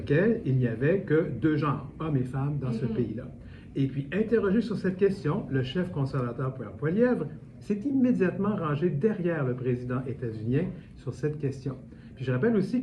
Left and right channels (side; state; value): both; identical; correlation 1.00